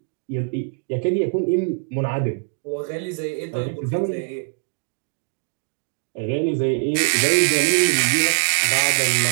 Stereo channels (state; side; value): quieter; left; 39.4 dB